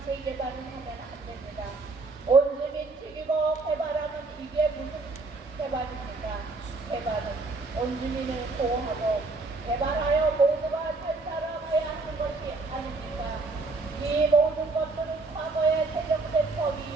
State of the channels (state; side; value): quieter; left; 3.6 dB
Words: 재개발을 하면 안 됩니다. 온주민 죽이고 개발하면 이게 무슨 개발입니까? 개발은 온주민을 보호하고 개발하여 모두가 잘 살아가야 하는 것이 아닙니까? 이 모든 것들은 과거에 제정된 법이